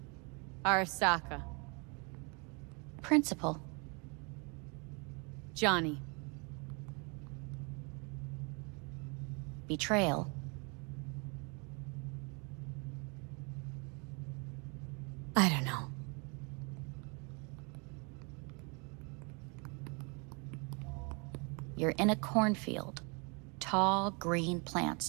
Arasaka. Principal. Johnny. Betrayal. I don't know. You're in a cornfield. Tall, green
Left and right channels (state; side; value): quieter; left; 32.8 dB